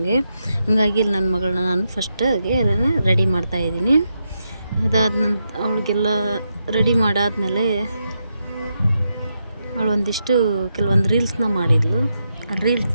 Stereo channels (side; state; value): both; inverted; correlation -0.84